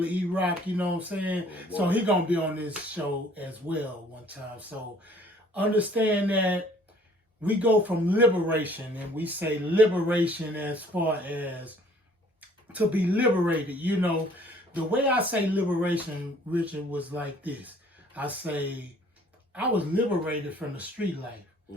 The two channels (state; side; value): normal; both; correlation 0.57